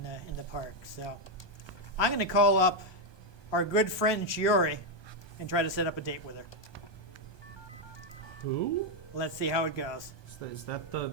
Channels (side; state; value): right; late; 1.2 ms